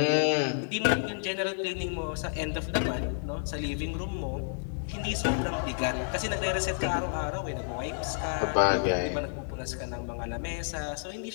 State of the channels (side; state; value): right; silent; digital silence